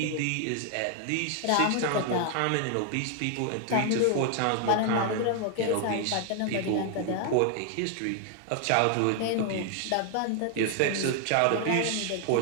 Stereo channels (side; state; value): both; different; correlation 0.00